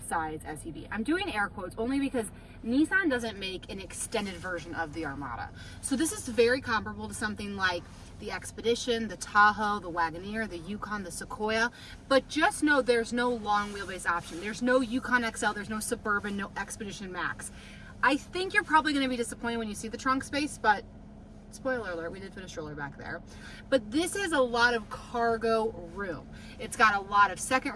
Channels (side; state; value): both; identical; correlation 1.00